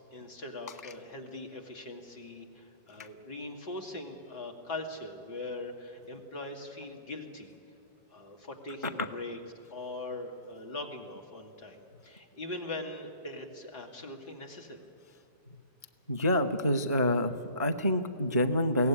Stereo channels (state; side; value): inverted; both; correlation -0.54